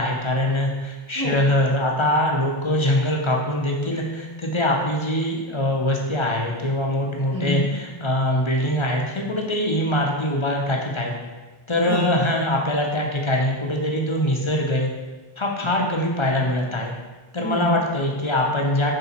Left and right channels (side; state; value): right; late; 1.3 ms